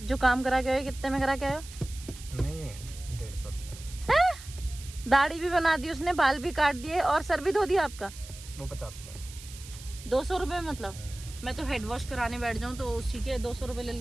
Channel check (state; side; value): noise; right; hiss, 16 dB below the sound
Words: जो काम करा के आए कितने में करा के आए हो? नहीं 150 रुपये। दाढ़ी भी बना दी उसने, बाल भी काट दिए और सर भी धो दिया आपका। वो 50 रुपये। 200 रुपये मतलब? मैं तो हेड वॉश कराने बैठ जाऊँ तो उसी के 200 रुपये ले